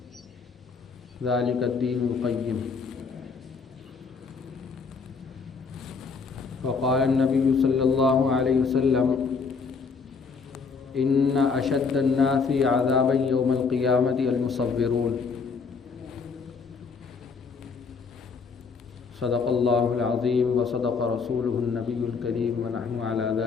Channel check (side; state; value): right; quieter; 5.1 dB